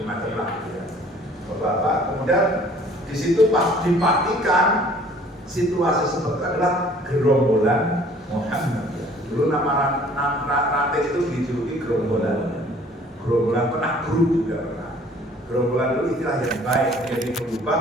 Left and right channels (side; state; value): both; normal; correlation 0.54